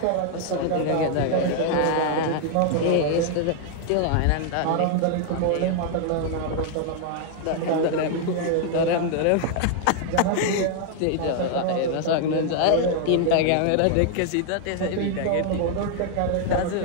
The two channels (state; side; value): different; both; correlation 0.00